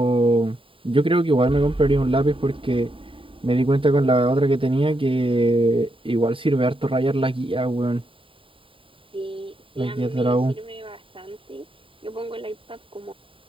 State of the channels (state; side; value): late; left; 0.25 ms